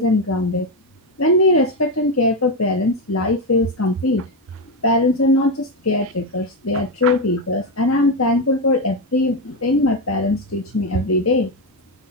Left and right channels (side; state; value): both; normal; correlation 0.09